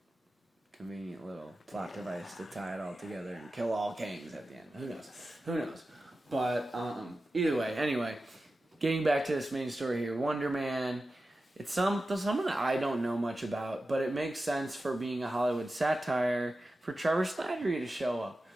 little plot device to tie it all together and kill all Kangs at the end. Who knows? But either way, anyway, getting back to this main story here, Wonder Man. It's someone that I don't know much about, but it makes sense for being a Hollywood satire for Trevor Slattery to show up.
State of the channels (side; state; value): both; normal; correlation 0.93